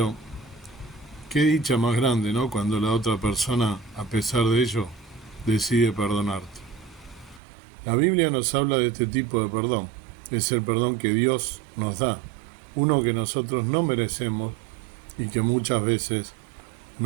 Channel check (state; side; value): drops out; left; at 7.4 s